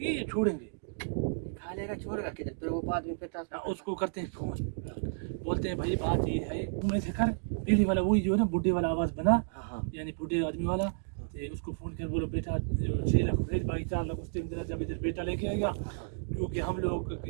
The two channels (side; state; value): left; silent; digital silence